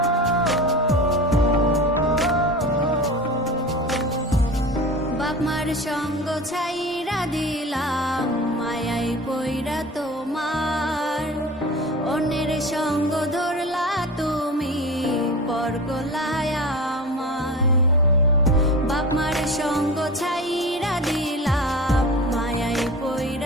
বাপ মার সঙ্গ ছাইরা দিলাম মায়াই পইরা তোমার, অন্যের সঙ্গ ধরলা তুমি পর গলায় আমায়। বাপ মার সঙ্গ ছাইরা দিলাম মায়াই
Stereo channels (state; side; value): normal; both; correlation 0.33